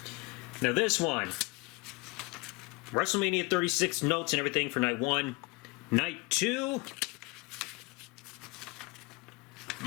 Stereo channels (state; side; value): quieter; right; 25.7 dB